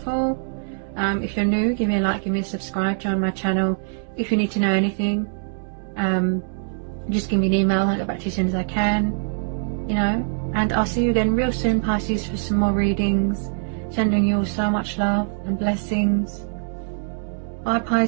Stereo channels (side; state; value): left; silent; 63 dB below the other